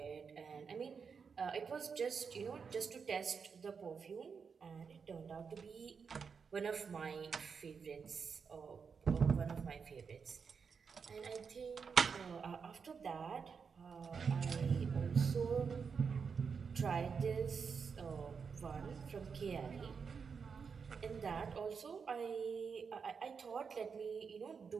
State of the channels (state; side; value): quieter; left; 5.9 dB